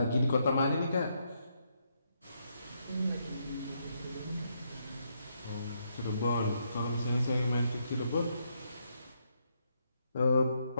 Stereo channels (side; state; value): both; inverted; correlation -0.77